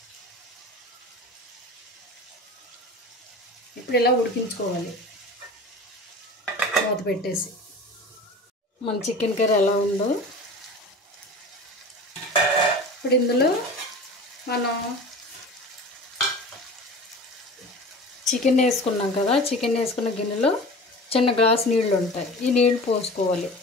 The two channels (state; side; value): normal; both; correlation 0.36